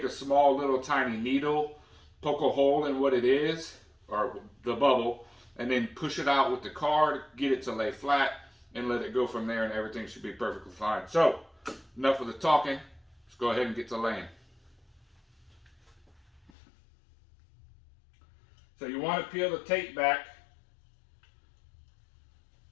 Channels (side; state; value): right; drops out; at 16.5 s